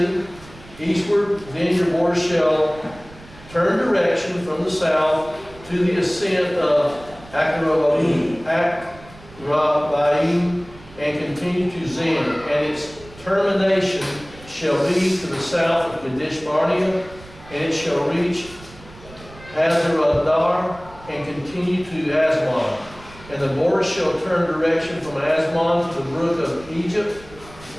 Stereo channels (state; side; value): noise; right; rumble, 21 dB below the sound